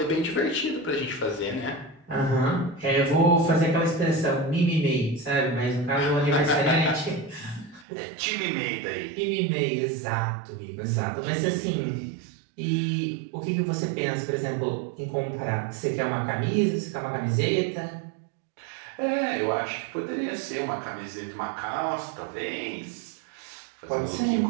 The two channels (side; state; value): left; drops out; at 7.9 s